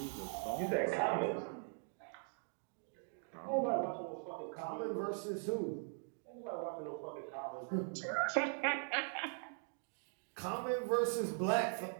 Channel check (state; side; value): silent; left; 50 dB below the other